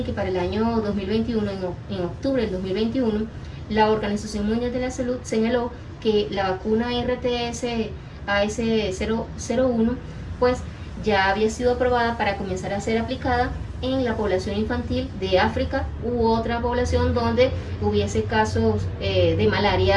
que para el año 2021, en octubre del 2021, la Organización Mundial de la Salud señaló que la vacuna RTS-AS01 pues ya había sido aprobada para comenzar a ser aplicada en la población infantil de África u otra población donde hubiese casos de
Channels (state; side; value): identical; both; correlation 1.00